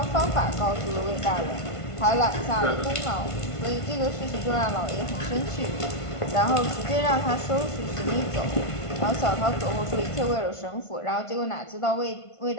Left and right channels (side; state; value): right; late; 1.5 ms